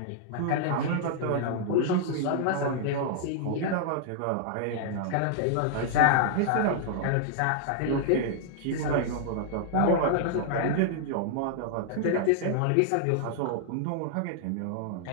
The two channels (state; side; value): different; both; correlation -0.01